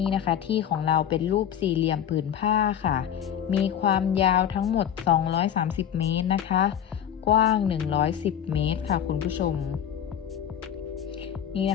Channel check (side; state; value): right; quieter; 9.3 dB